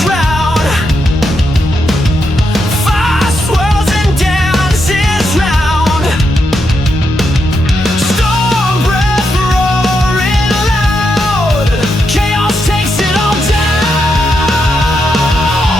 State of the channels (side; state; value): both; normal; correlation 0.83